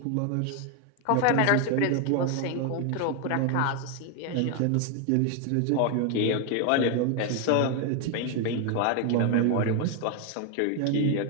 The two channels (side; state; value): both; different; correlation 0.01